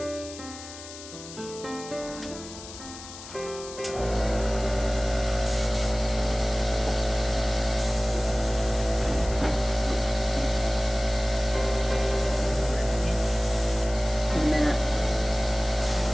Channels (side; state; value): left; noise; hiss, 14 dB below the sound